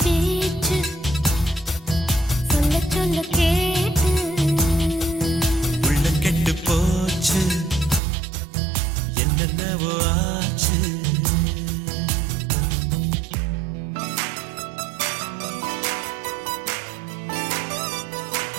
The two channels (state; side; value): drops out; left; at 8.0 s